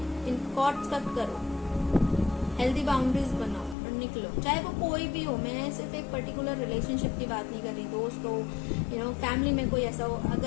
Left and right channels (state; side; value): drops out; right; at 3.8 s